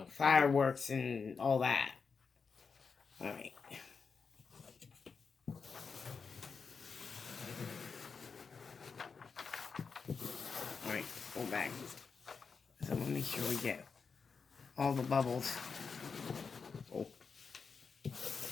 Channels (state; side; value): quieter; right; 5.4 dB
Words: sure. Fireworks and all that. Alright. Alright, pull back. So let me make sure we get all the bubbles. Oh.